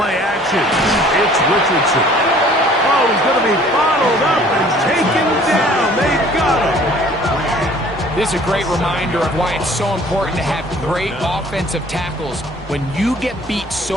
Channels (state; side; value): normal; both; correlation 0.53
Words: action. It's Richardson. Oh, he's going to be bottled up and taken down. They got him. This is a great reminder of why it's so important to have great offensive tackles. When you get beat